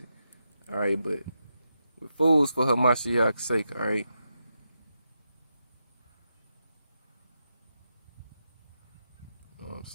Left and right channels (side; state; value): both; inverted; correlation -0.86